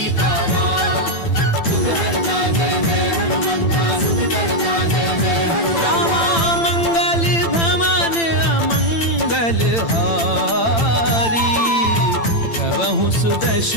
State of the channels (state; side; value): late; right; 8.9 ms